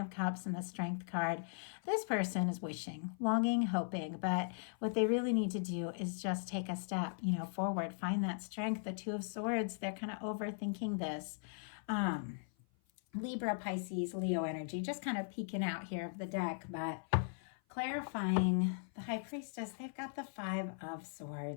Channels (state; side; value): silent; right; 52 dB below the other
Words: Cups and the Strength card. This person is wishing, longing, hoping, but what they really need to do is just take a step, forward, find that strength. The Two of Swords, they're kind of overthinking this. Libra, Pisces, Leo energy, just kind of peeking out here of the deck, but clarifying the High Priestess, they've got the Five of